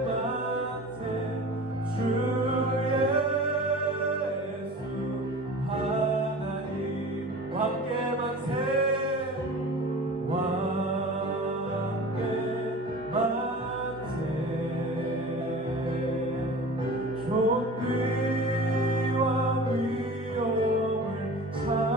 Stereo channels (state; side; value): normal; both; correlation 0.38